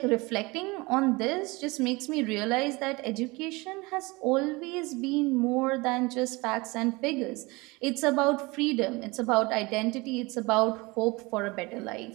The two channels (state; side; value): quieter; left; 24.3 dB